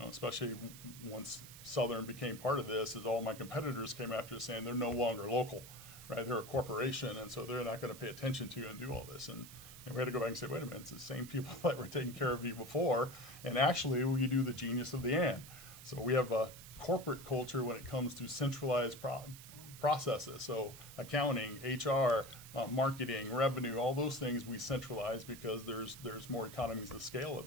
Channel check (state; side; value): noise; right; hiss, 15 dB below the sound